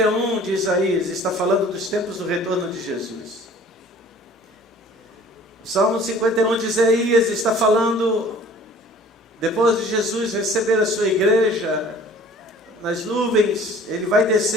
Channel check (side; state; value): both; normal; correlation 0.50